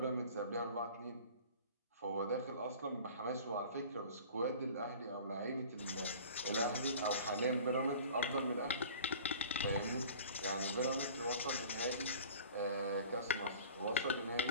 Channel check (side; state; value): both; inverted; correlation -0.44